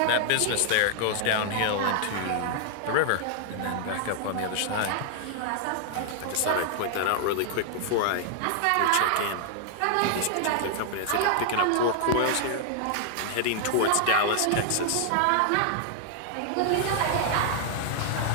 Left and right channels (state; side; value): different; both; correlation 0.00